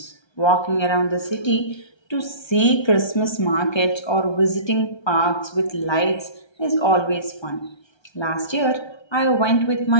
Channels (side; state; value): right; late; 1.3 ms